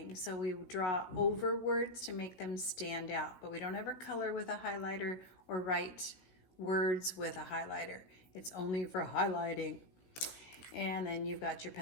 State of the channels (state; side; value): late; right; 17 ms